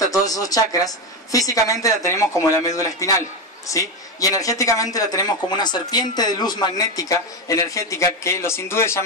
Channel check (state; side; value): normal; both; correlation 0.13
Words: todos esos chakras, físicamente la tenemos como la médula espinal, ¿sí? Y energéticamente la tenemos como una serpiente de luz magnética, energética, que los hindúes